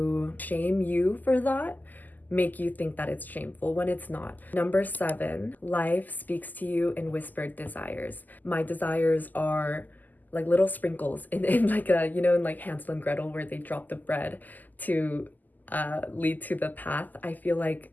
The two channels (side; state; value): right; late; 0.084 ms